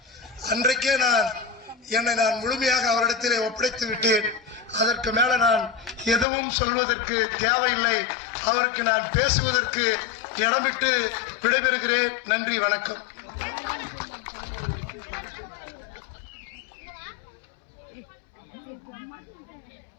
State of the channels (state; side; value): drops out; right; at 6.2 s